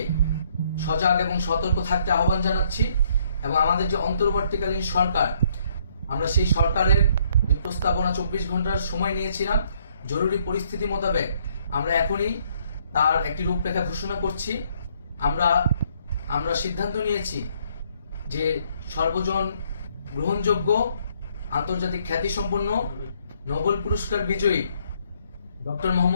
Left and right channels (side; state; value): both; inverted; correlation -0.67